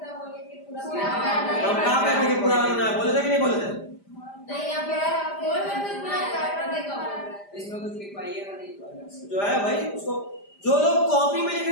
बोले कि पूरा हम कहाँ कहते हैं कि पूरा रंगना है, बोले थे कि नहीं बोले थे? नहीं, आप बोल रहे थे ना, इसमें कुछ लिखवाइएगा नहीं तो अलग से। जो है भाई उसको, जो लोग कॉपी में लिख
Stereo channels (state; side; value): late; right; 5.0 ms